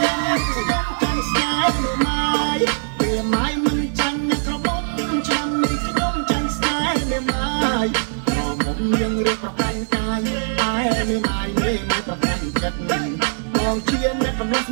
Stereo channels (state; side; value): silent; left; digital silence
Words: នាំនេះខ្ញុំចង់ស្នេហ៍ម៉ែមិនចាំណាក៏បងឆ្នាំនេះខ្ញុំចង់ស្នេហ៍ម៉ែក៏មុំយើងរៀបប្រកាន់កាយតែម៉ែប្រកាន់ចិត្តបងជាអ្នកកំឡុង